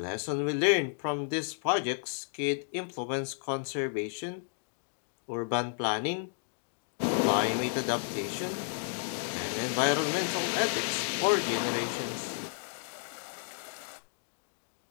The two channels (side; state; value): right; silent; digital silence